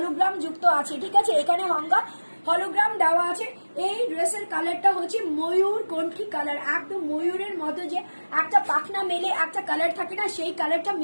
যুক্ত আছে। ঠিক আছে, এখানে গঙ্গা হলোগ্রাম দেওয়া আছে। এই ড্রেসের কালারটা হচ্ছে ময়ূর কণ্ঠী কালার, একদম ময়ূরের মতো যে একটা পাখনা মেলে একটা কালার থাকে না, সেই কালারটা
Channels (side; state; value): both; inverted; correlation -1.00